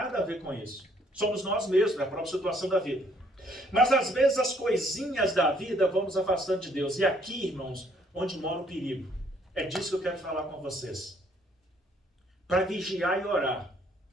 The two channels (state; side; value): normal; both; correlation 0.65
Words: a ver com isso. Somos nós mesmos, a própria situação da vida. Mas às vezes as coisinhas da vida vão nos afastando de Deus. E aqui, irmãos, onde mora o perigo. É disso que eu quero falar com vocês. Para vigiar e orar.